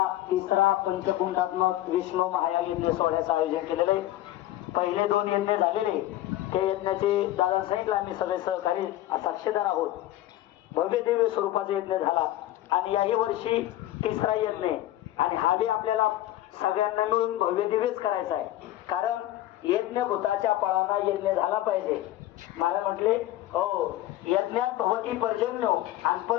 तिसरा पंचकुंडात्मक विष्णू महायाग यज्ञ सोहळ्याचं आयोजन केलेलं आहे. पहिले 2 यज्ञ झालेले, त्या यज्ञाचे दादा सांगितलं आम्ही सगळे सहकारी साक्षीदार आहोत. भव्य दिव्य स्वरूपाचा यज्ञ झाला आणि याही वर्षी तिसरा यज्ञ आणि हा बी आपल्याला सगळ्यांना मिळून भव्य दिव्यच करायचा आहे. कारण यज्ञ भूताच्या पळाना यज्ञ झाला पाहिजे. मला म्हटले हो, यज्ञात भवती पर्जन्य आणि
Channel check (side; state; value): right; quieter; 14.6 dB